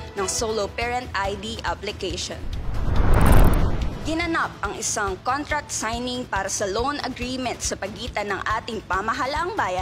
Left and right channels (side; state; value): both; identical; correlation 1.00